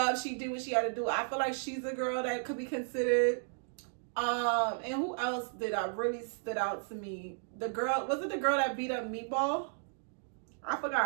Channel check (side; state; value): left; silent; digital silence